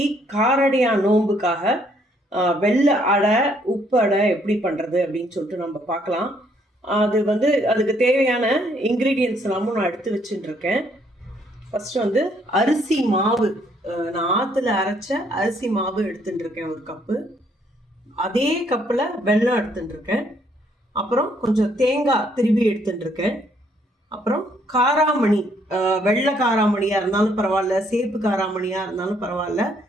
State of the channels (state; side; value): normal; both; correlation 0.68